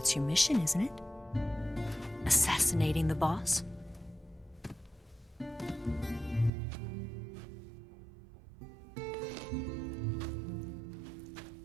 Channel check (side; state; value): left; drops out; at 6.5 s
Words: your mission, isn't it? Assassinating the boss?